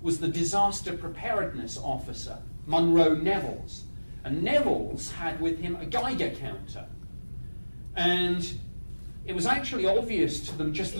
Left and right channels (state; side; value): inverted; both; correlation -1.00